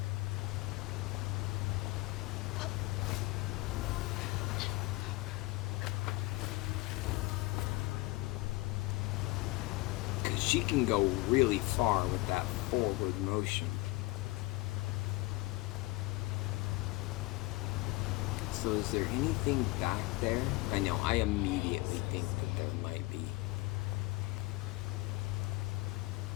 Because she can go really far with that forward motion. So is there anything back there? I know, I immediately think that there might be.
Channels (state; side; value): quieter; right; 21.3 dB